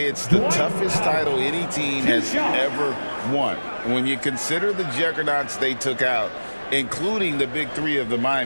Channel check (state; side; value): inverted; both; correlation -1.00